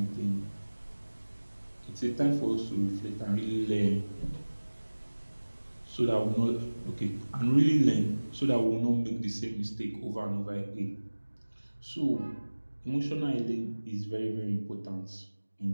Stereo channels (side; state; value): both; inverted; correlation -1.00